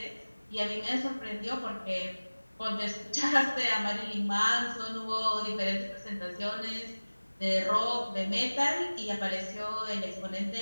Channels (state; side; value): inverted; both; correlation -1.00